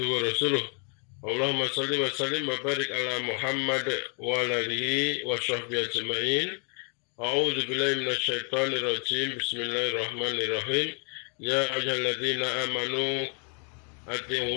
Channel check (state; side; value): quieter; right; 39.0 dB